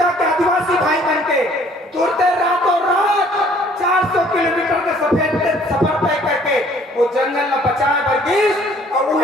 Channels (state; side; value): normal; both; correlation 0.58